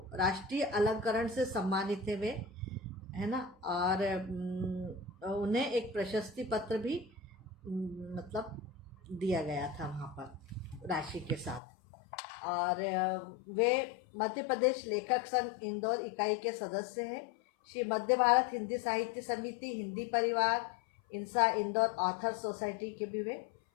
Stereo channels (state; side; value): drops out; right; at 11.6 s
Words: राष्ट्रीय अलंकरण से सम्मानित थे वे, है ना, और उन्हें एक प्रशस्ति पत्र भी मतलब दिया गया था वहाँ पर राशि के साथ। और वे मध्य प्रदेश लेखक संघ इंदौर इकाई के सदस्य हैं। श्री मध्य भारत हिंदी साहित्य समिति, हिंदी परिवार, इंसा इंदौर ऑथर सोसाइटी के भी वे